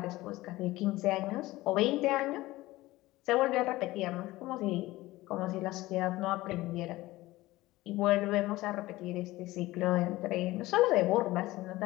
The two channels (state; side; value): quieter; right; 18.2 dB